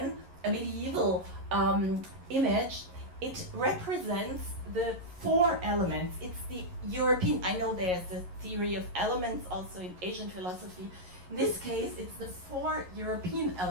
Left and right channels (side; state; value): left; late; 11 ms